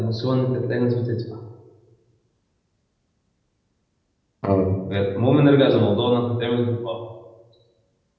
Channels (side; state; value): both; identical; correlation 1.00